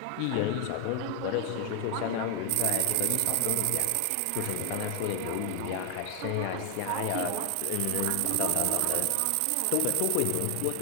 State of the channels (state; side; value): different; both; correlation 0.00